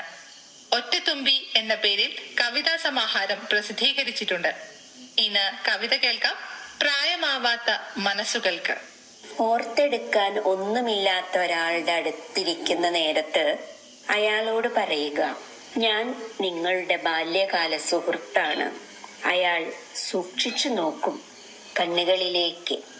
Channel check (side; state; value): both; identical; correlation 1.00